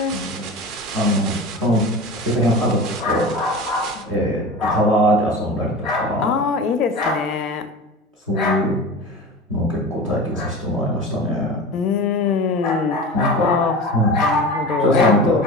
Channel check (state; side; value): normal; both; correlation 0.32